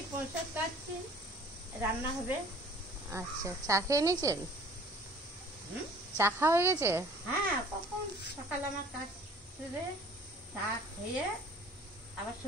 পয়সা কাটছি, রান্না হবে। আচ্ছা, চা খেয়ে নিয়েছেন? চা খাওয়া হয়ে গেছে? হ্যাঁ, কখন সকালে আমার কাজ করে চা খেয়ে আবার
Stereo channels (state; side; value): normal; both; correlation 0.51